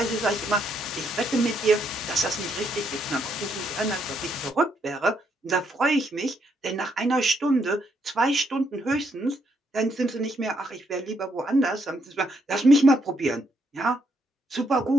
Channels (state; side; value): normal; both; correlation 0.75